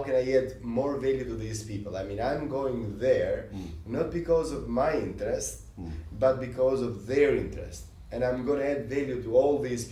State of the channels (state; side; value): identical; both; correlation 1.00